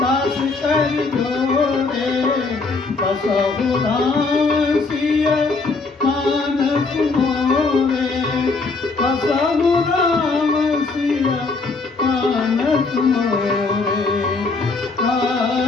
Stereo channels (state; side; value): quieter; right; 4.0 dB